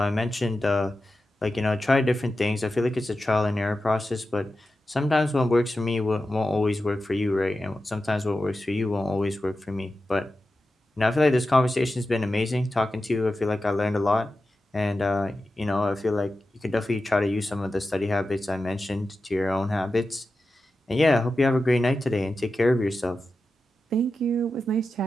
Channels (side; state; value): both; normal; correlation 0.92